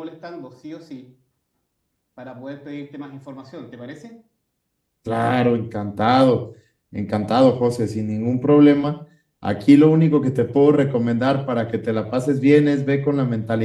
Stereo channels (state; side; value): identical; both; correlation 1.00